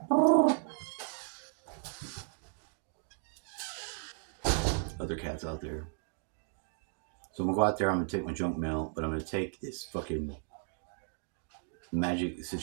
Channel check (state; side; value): silent; left; 55 dB below the other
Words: Other cats out there. So I'm gonna go out there, I'm gonna take my junk mail, but I'm gonna take this fucking magic